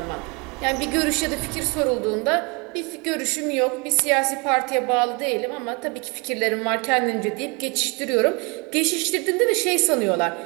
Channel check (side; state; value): left; quieter; 30.2 dB